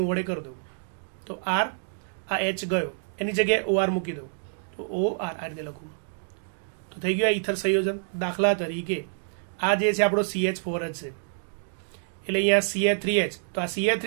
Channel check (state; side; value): silent; left; digital silence